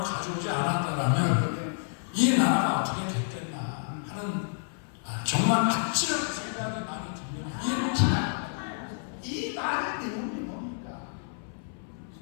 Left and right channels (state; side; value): silent; right; 58 dB below the other